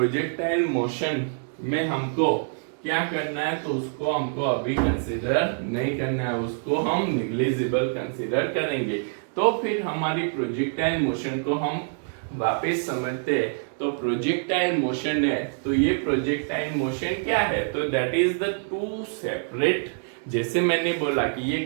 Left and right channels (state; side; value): silent; left; 61 dB below the other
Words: मोशन में हमको क्या करना है, तो उसको हमको अभी कंसीडर नहीं करना है, उसको हम निग्लिजिबल कंसीडर करेंगे। तो फिर हमारी प्रोजेक्टाइल मोशन को हम वापस समझते हैं। तो प्रोजेक्टाइल मोशन है, तो ये प्रोजेक्टाइल मोशन क्या है, तो that is the two separate, जैसे मैंने बोला कि ये